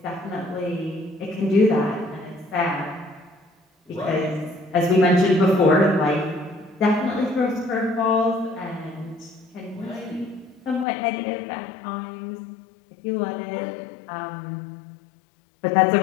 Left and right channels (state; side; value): drops out; right; at 10.9 s